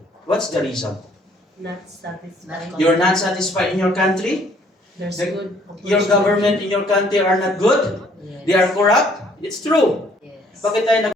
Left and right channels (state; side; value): normal; both; correlation 0.62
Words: What's the reason? Not satisfied. You're not satisfied in your country? There's The- good Your government in your country are not good? Yes. They are corrupt? It's true. Yes. Bakit tayo